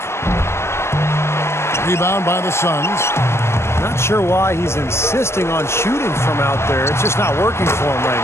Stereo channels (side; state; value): right; late; 0.13 ms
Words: Rebound by the Suns. Not sure why he's insisting on shooting from out there. It's just not working for him right